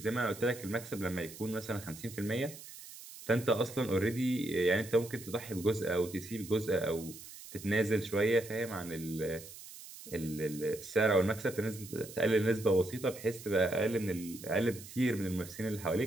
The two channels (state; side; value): noise; right; hiss, 15 dB below the sound